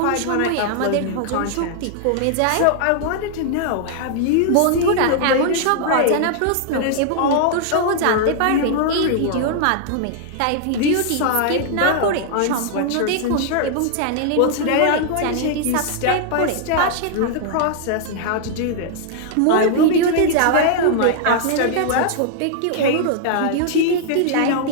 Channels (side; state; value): both; different; correlation -0.01